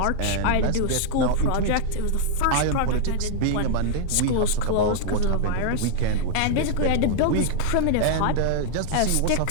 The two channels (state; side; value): different; both; correlation -0.01